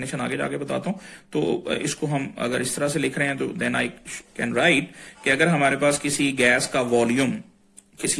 आगे जाके बताता हूं। तो इसको हम अगर इस तरह से लिख रहे हैं तो देन आई कैन राइट कि अगर हमारे पास किसी गैस का वॉल्यूम,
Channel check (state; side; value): identical; both; correlation 1.00